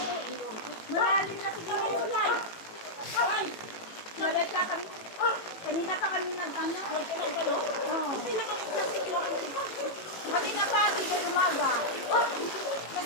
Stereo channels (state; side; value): late; right; 18 ms